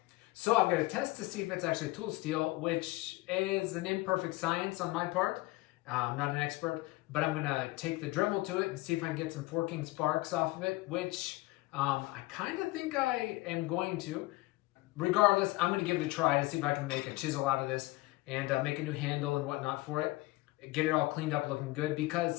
So I'm going to test to see if it's actually tool steel, which is an imperfect science on my part. I'm not an expert, but I'm going to take the Dremel to it and see if I can get some forking sparks off of it, which I kind of think I am going to. Regardless, I'm going to give it a try to see if I can make a chisel out of this and make a new handle and whatnot for it. Get it all cleaned up looking good,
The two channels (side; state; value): right; quieter; 21.0 dB